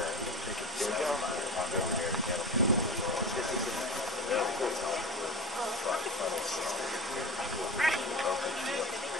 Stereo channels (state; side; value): normal; both; correlation 0.30